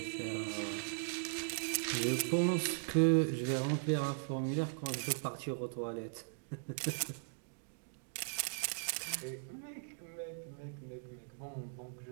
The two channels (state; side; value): silent; left; digital silence